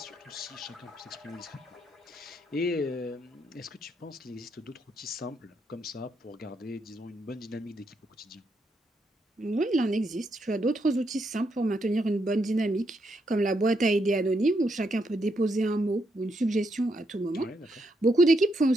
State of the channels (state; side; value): normal; both; correlation 0.79